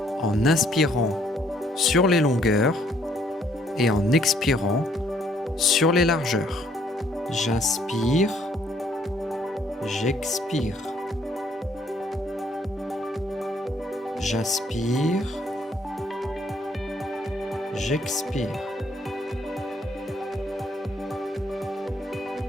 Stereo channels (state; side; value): normal; both; correlation 0.66